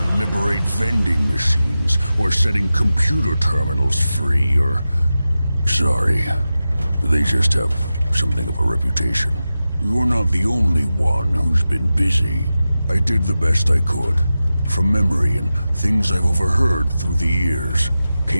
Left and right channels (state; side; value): inverted; both; correlation -0.93